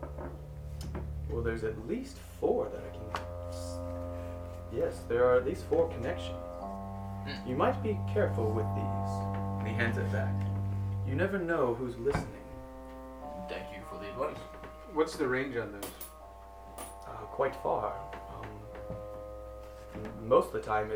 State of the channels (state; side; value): identical; both; correlation 1.00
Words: Well, there's at least 4 that I can... Yes, there are at least 4 connections. You might be careful with these. And he hands it back. You never know who's listening. Thank you for the advice. What's the range on those? Quite far. Most of the time